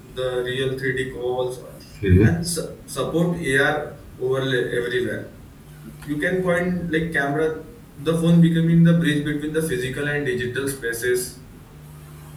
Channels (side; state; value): both; identical; correlation 1.00